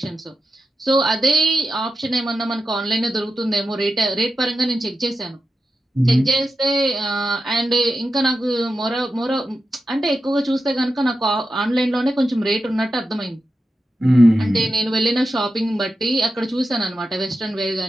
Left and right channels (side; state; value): both; normal; correlation 0.90